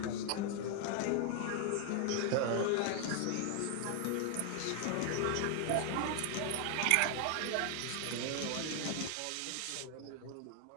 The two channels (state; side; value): different; both; correlation 0.00